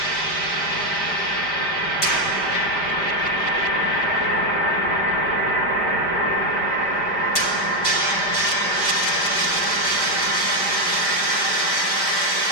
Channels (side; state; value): right; late; 5.1 ms